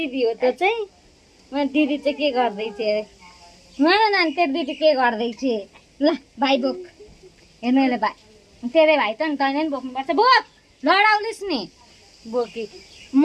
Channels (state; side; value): identical; both; correlation 1.00